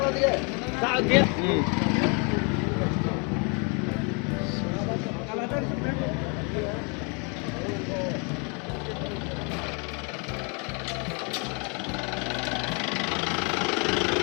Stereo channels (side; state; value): right; quieter; 34.4 dB